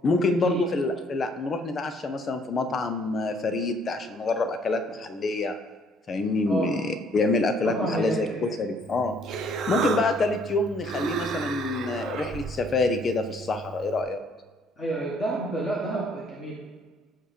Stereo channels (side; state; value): both; normal; correlation 0.63